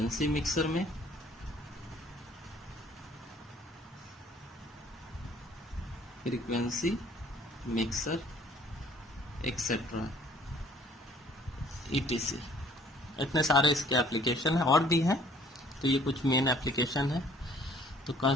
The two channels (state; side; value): normal; both; correlation 0.57